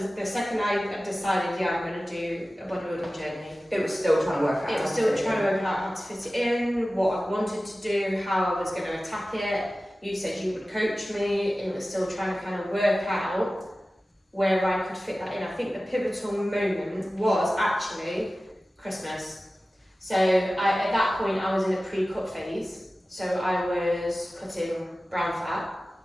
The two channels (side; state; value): both; normal; correlation 0.96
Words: the second I decided, I'm going to do a bodybuilding journey, it was still trying to work out. It was still trying to work out how to fit it in, what I wanted to do, how I was going to attack it. You said you would coach me. It was still trying to kind of work out where I could fit that in. I think the pivotal moment was actually Christmas. So at that point I was in a pre-cut phase. So I was cutting brown fat.